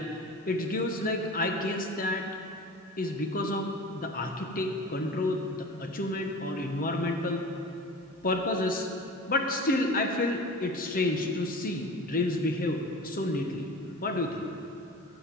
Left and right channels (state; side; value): normal; both; correlation 0.36